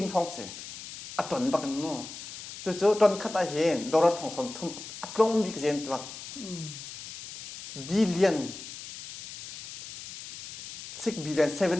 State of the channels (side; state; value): left; noise; hiss, 12 dB below the sound